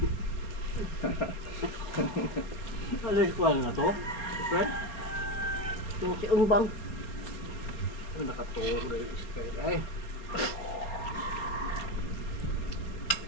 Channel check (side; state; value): right; late; 4.2 ms